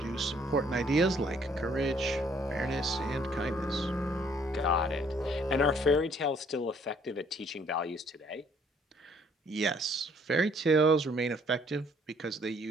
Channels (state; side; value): normal; both; correlation 0.62